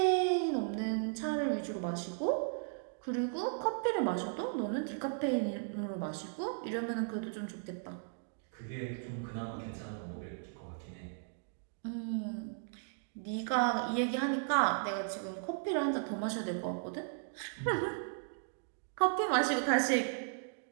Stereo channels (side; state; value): left; silent; digital silence